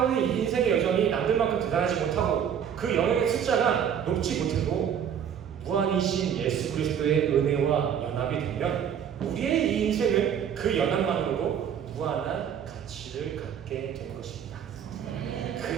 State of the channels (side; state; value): left; quieter; 8.5 dB